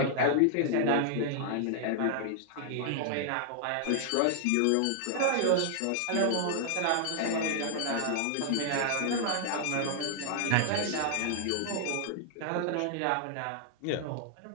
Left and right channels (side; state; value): both; different; correlation 0.00